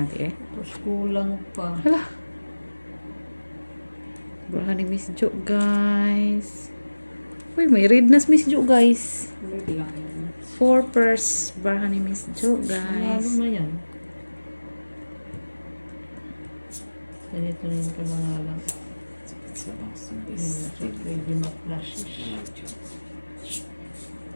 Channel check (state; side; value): inverted; both; correlation -1.00